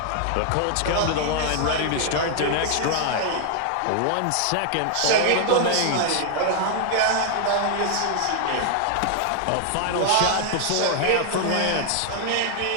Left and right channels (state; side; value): different; both; correlation 0.00